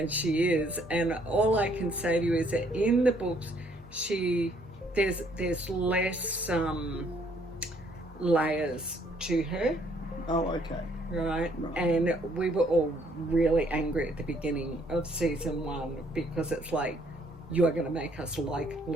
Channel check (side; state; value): both; normal; correlation 0.66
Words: she is. And all I can say to you is that in the books, there's less layers to her. Oh, okay. Right? And we were all really angry at the beginning of season 1 because it's like, you are going to make us like